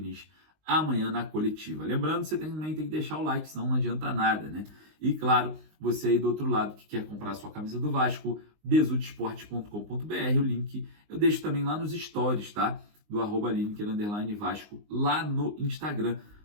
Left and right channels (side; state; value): left; late; 19 ms